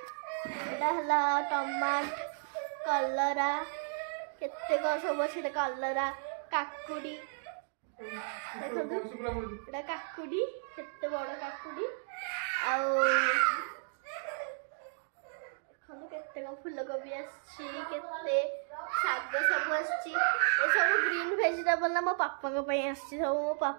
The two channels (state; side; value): silent; left; digital silence